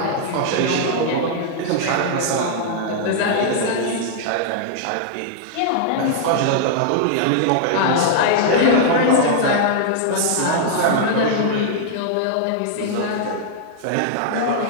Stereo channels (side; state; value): both; different; correlation -0.01